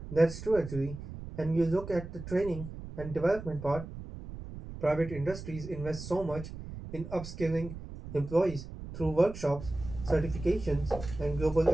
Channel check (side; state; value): right; noise; rumble, 11 dB below the sound